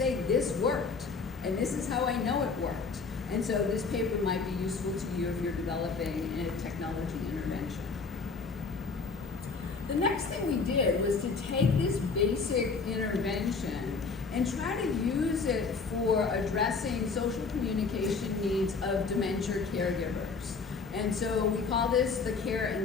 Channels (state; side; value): quieter; right; 4.7 dB